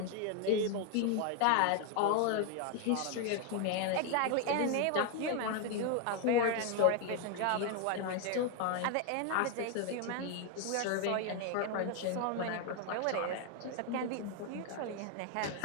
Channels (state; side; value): different; both; correlation 0.01